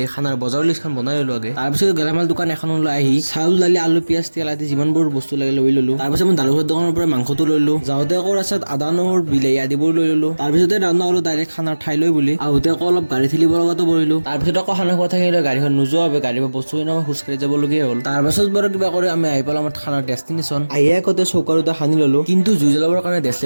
খানাৰ বজাৰৰ লিষ্টখন বনাই ললো আগে। তাৰপিছত গেলামাল দোকান এখনলৈ আহি চাউল, দালি, আলু, পিয়াজ, তেল আদি যিমানবোৰ বস্তু লাগে লৈ ললো। তাৰপিছত মই দাদুৰ ঘৰৰ দোকানৰ পৰা মাংসটো লৈ ললো। যাওঁতে আকৌ ৰাস্তাত আদা, নহৰু, বিলাহী আদিবোৰ লৈ ললো। তাৰপিছতে ৰাওনা হলো ডাইৰেক্ট খানাৰ ঠাইলৈ বুলি। আহোঁতে আকৌ অলপ গাড়ী ঠেলিব লগাতো পৰিলো। তাৰপিছত আকৌ খানা খোৱা থাকিলে গাড়ীখন নোযোৱা বাবে গাড়ীৰ পৰা বস্তু কিনি খোজকাঢ়ি যাবলগীয়া হ'ল। তাৰপাছত বাৰু কিবা কৰি আমি আহি পালো আমাৰ খানাৰ ডেষ্টিনেশ্যন। আহিয়ে আগতে চৌকা দুটা সানি ললো, কিন্তু জুই জ্বলাবৰ কাৰণে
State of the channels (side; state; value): both; inverted; correlation -1.00